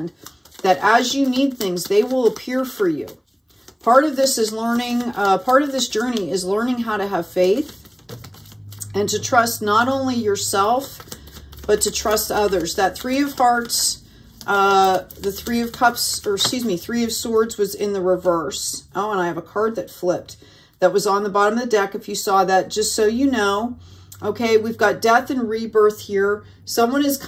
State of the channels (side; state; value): both; identical; correlation 1.00